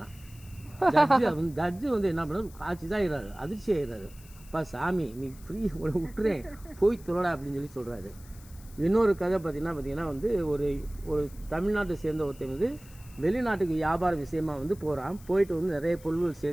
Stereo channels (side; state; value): left; noise; hiss, 23 dB below the sound